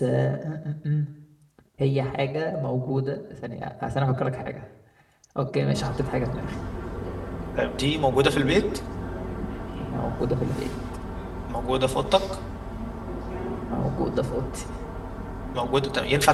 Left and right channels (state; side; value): identical; both; correlation 1.00